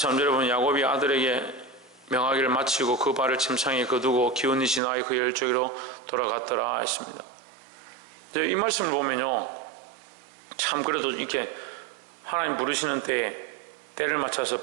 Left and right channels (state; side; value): drops out; left; at 4.8 s